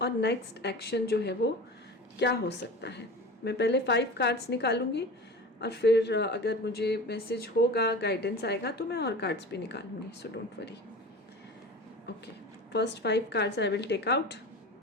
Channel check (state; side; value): normal; both; correlation 0.34